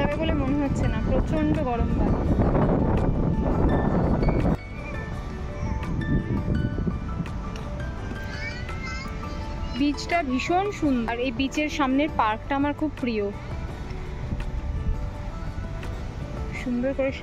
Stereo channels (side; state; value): both; identical; correlation 1.00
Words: বলে মনে হচ্ছে না, প্রচণ্ড গরম বালি। বিচটা ভীষণ সুন্দর, আর এই বিচের সামনের পার্কটা আমার খুব প্রিয়। সুন্দর করে